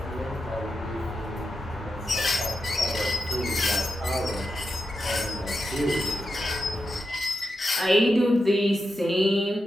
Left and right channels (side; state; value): both; normal; correlation 0.88